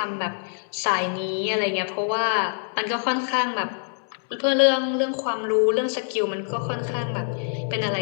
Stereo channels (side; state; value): right; silent; digital silence